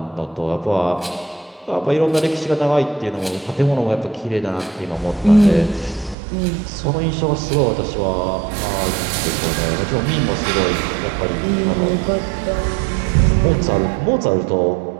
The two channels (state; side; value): drops out; left; at 6.2 s